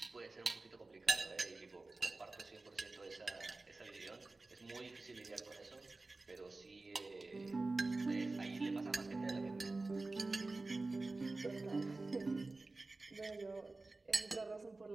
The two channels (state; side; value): quieter; left; 3.3 dB